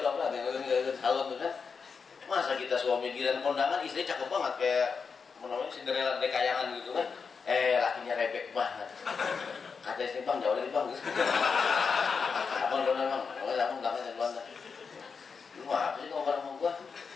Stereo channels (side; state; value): right; quieter; 5.5 dB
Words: tuh apa? Salon tuh kan. Masa kita suami giliran kondangan istri cakep banget kayak namanya Cinderella dekayangan gitu kan. Lakinya rebek banget. Kata istri bang jauh lagi bang. Abang dong bang. Abang belakangnya belakang. Lu apa sih ngomong sama gua?